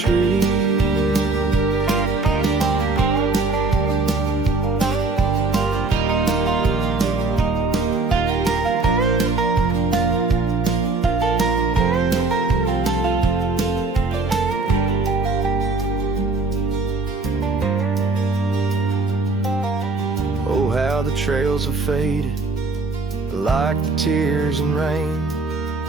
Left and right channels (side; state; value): left; quieter; 3.4 dB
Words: Oh, how the trails have faded, like the tears and rain,